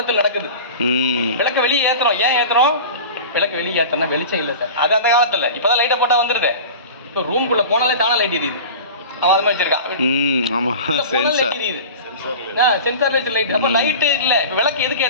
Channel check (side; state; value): both; inverted; correlation -0.34